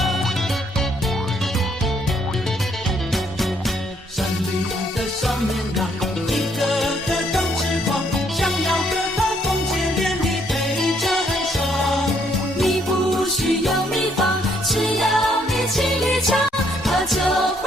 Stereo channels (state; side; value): normal; both; correlation 0.69